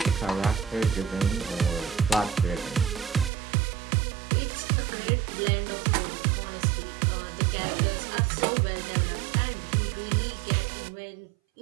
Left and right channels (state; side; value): drops out; left; at 3.3 s